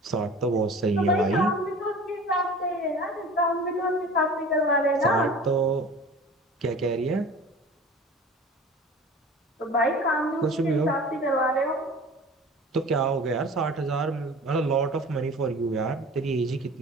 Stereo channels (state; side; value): normal; both; correlation 0.41